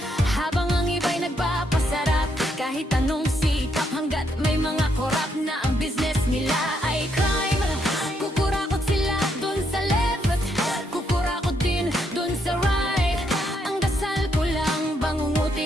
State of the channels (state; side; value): normal; both; correlation 0.76